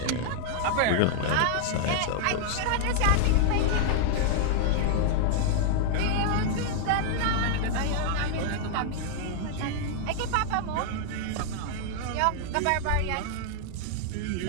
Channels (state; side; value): different; both; correlation -0.01